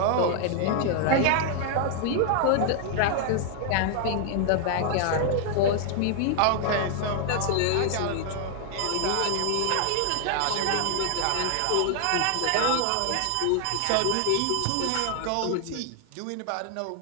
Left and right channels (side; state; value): both; different; correlation 0.00